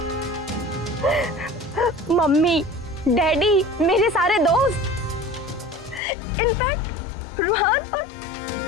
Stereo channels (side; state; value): right; drops out; at 6.0 s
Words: मम्मी, डैडी, मेरे सारे दोस्त, इनफैक्ट रूहान और